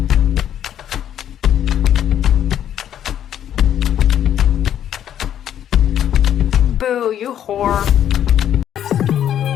Boo, you whore.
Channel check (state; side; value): quieter; right; 10.3 dB